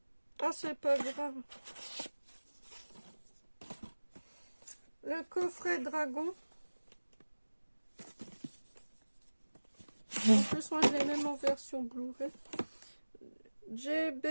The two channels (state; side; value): inverted; both; correlation -1.00